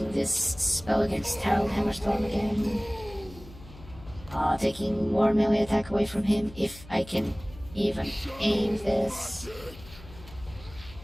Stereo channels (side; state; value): left; noise; hum, 18 dB below the sound